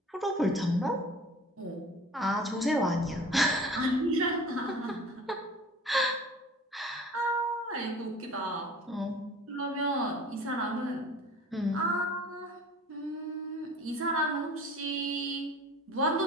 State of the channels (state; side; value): normal; both; correlation 0.44